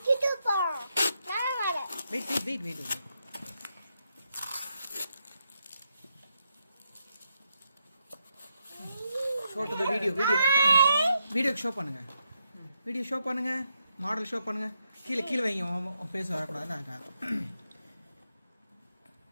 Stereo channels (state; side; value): inverted; both; correlation -0.81